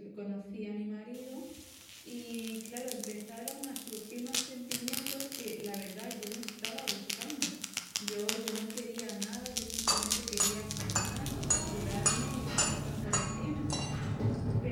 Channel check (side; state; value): both; identical; correlation 1.00